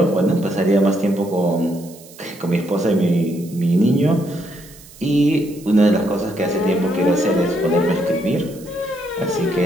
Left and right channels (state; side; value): noise; right; hiss, 21 dB below the sound